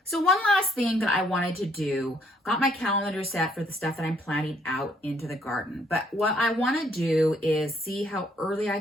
So one last thing that I wanted to do, got my calendar set for the stuff that I'm planting out into the garden. But what I want to do is see how early I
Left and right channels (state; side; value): normal; both; correlation 0.67